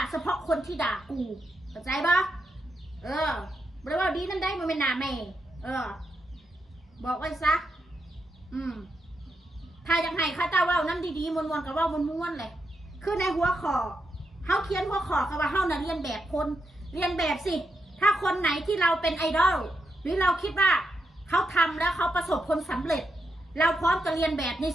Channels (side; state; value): both; normal; correlation 0.84